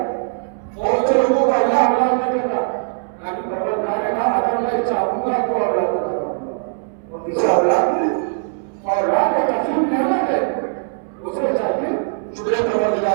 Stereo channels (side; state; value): left; silent; 66 dB below the other